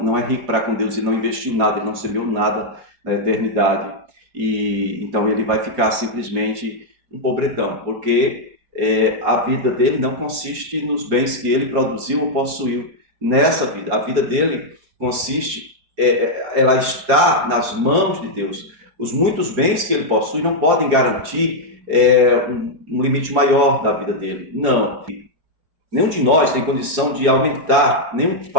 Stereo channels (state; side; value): late; left; 4.9 ms